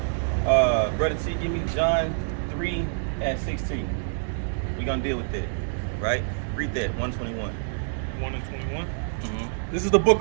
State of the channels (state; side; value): silent; left; digital silence